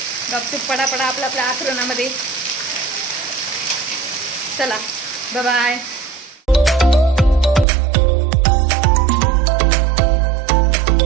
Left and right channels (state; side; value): drops out; left; at 7.7 s